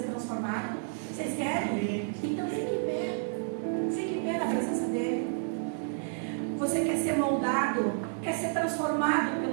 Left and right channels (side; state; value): left; silent; digital silence